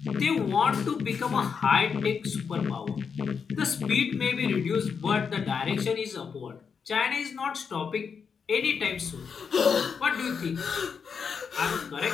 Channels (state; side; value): quieter; right; 6.2 dB